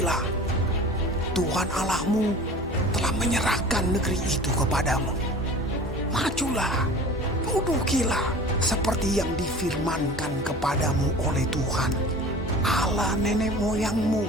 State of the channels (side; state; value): both; normal; correlation 0.40